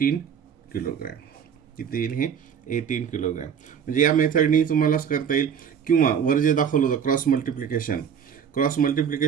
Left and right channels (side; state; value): left; quieter; 7.7 dB